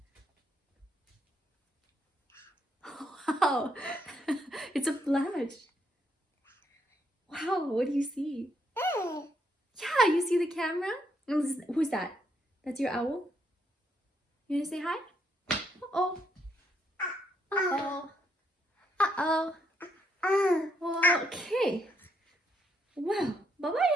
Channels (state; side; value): normal; both; correlation 0.74